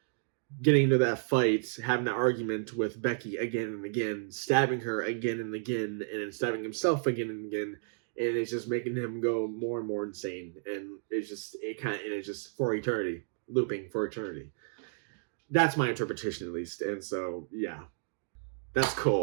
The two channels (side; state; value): left; silent; digital silence